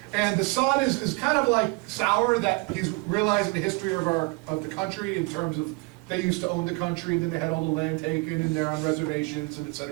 And the son is kind of like sour that he's realizing the history of the country in terms of they used to own the country, and then they had all the land taken, and they're on reservations, and et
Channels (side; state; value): left; quieter; 27.6 dB